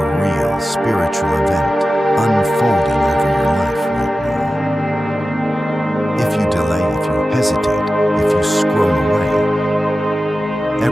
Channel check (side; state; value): both; normal; correlation 0.94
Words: real spiritual event unfolding over your life right now. If you delay, if you hesitate, if you scroll away,